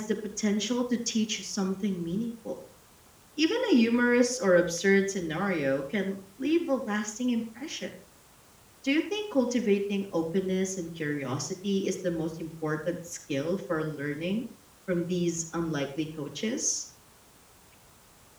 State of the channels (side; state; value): both; identical; correlation 1.00